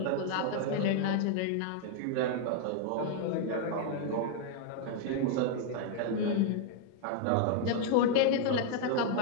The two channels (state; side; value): different; both; correlation 0.00